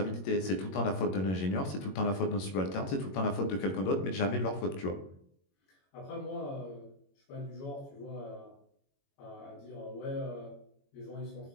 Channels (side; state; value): right; late; 21 ms